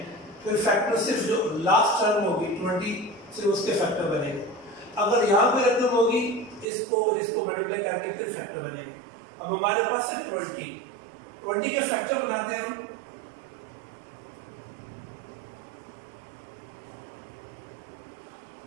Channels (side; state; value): left; drops out; at 6.7 s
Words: फिर फैक्टर सिर्फ जो लास्ट टर्म होगी 20 सिर्फ उसके फैक्टर बनेगा। अगर यहाँ पे रकम होगी, इसको मल्टीप्लाई करके फिर फैक्टर बनेगा। अब हमारे पास है 20 के फैक्टर बनाते हैं हम।